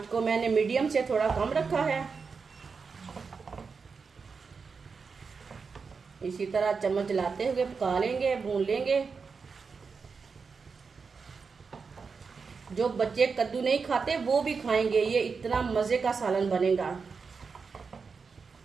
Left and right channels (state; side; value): quieter; left; 5.2 dB